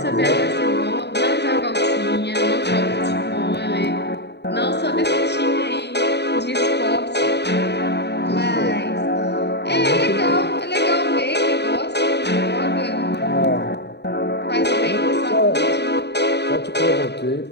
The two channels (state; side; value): late; right; 0.49 ms